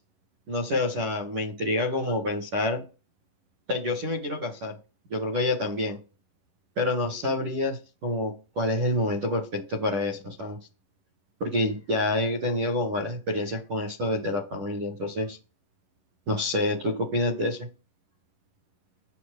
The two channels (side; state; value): left; late; 11 ms